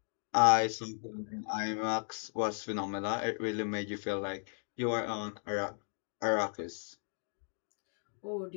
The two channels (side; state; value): right; silent; 54 dB below the other